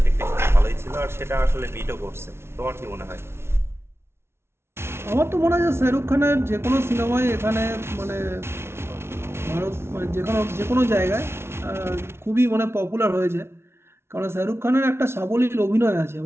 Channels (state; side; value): late; left; 0.12 ms